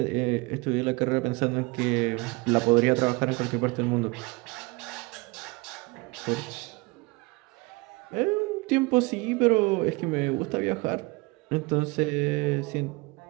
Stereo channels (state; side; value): quieter; left; 26.0 dB